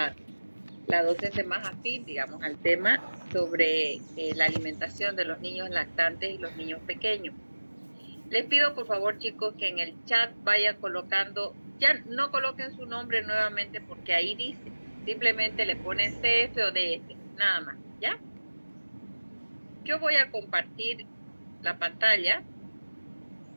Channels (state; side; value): inverted; both; correlation -1.00